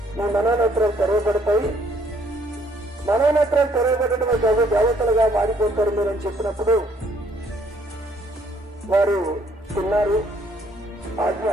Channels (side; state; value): both; normal; correlation 0.65